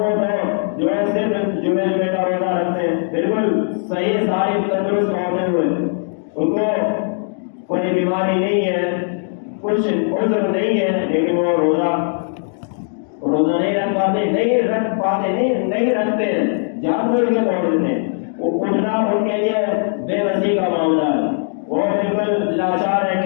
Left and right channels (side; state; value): right; silent; 62 dB below the other